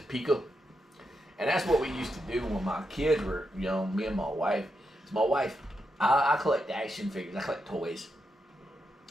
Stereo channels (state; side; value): normal; both; correlation 0.84